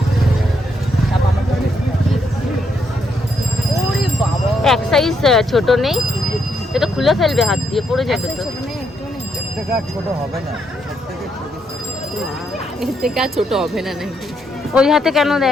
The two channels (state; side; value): normal; both; correlation 0.77